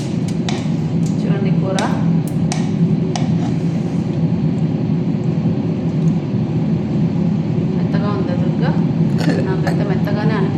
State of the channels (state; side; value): identical; both; correlation 1.00